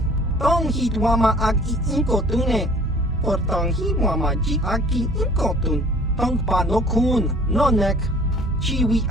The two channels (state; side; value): normal; both; correlation 0.51